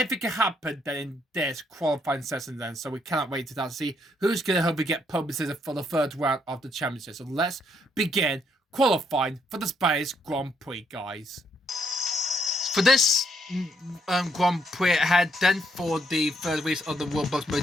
can happen then in this qualifying session then. So we cannot wait to see who's going to hopefully get pole position for the third round of the championship. So let's begin qualifying for the Spanish Grand Prix, guys. For this Grand Prix ahead then for the third race of the Roblox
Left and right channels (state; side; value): normal; both; correlation 0.73